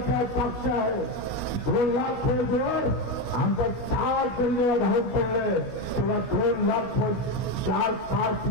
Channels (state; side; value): late; right; 17 ms